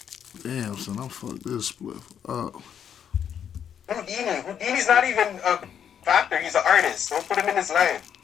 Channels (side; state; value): right; quieter; 8.6 dB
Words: Damn, son, I'm fucked this split up. Houdini's not even a factor. He's an artist. Don't put him in his life.